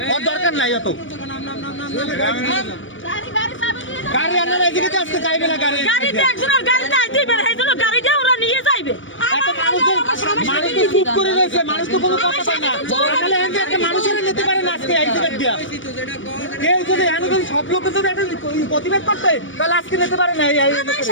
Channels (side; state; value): right; late; 0.56 ms